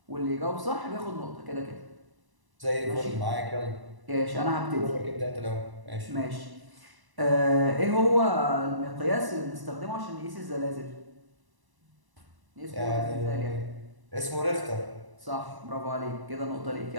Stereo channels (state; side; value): late; left; 1.0 ms